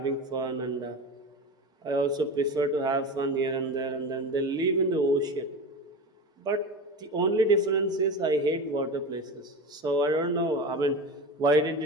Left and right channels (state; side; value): normal; both; correlation 0.27